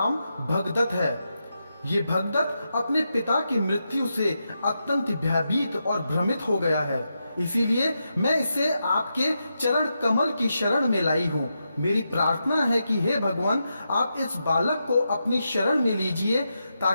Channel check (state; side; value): inverted; both; correlation -0.86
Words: भगदत्त है। ये भगदत्त अपने पिता की मृत्यु से अत्यंत भयभीत और भ्रमित हो गया है, इसीलिए मैं इसे आपके चरण कमल की शरण में लाई हूँ। मेरी प्रार्थना है कि हे भगवान, आप इस बालक को अपनी शरण में लीजिए